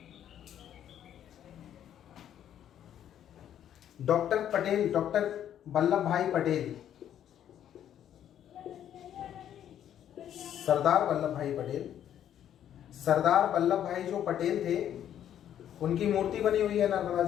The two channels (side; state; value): right; quieter; 10.4 dB